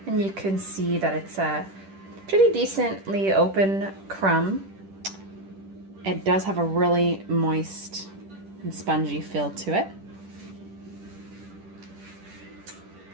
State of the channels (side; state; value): left; late; 10 ms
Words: and you can see that it's a pretty decently open crumb. It does have a really moist and spongy feel to it.